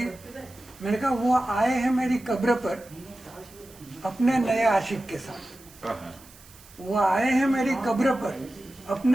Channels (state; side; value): noise; right; hiss, 23 dB below the sound